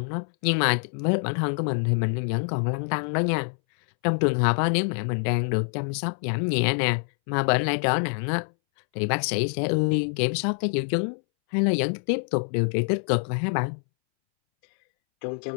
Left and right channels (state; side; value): silent; right; 61 dB below the other